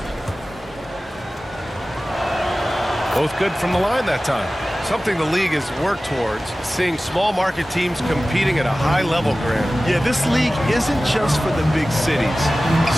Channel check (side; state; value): both; normal; correlation 0.96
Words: Both good from the line that time. Something the league has worked towards, seeing small market teams competing at a high level, Grant. Yeah, this league isn't just for the big cities.